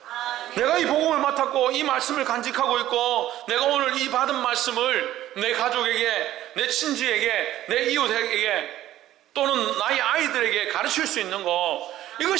내가 이 복음을 맡았고 이 말씀을 간직하고 있고, 내가 오늘 이 받은 말씀을 내 가족에게, 내 친지에게, 내 이웃에게, 또는 나의 아이들에게 가르칠 수 있는 거,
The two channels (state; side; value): quieter; left; 13.6 dB